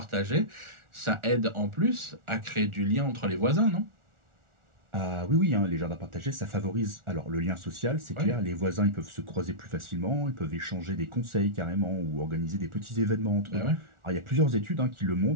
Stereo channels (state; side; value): late; left; 1.4 ms